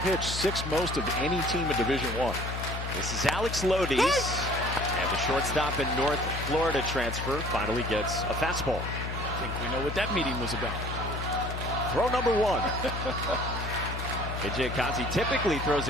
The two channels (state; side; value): noise; left; hum, 5 dB below the sound